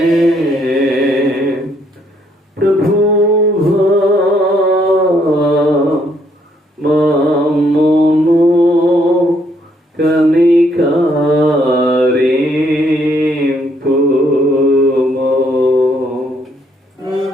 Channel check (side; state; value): both; normal; correlation 0.70